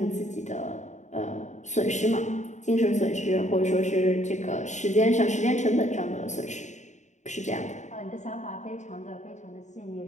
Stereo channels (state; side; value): late; right; 0.34 ms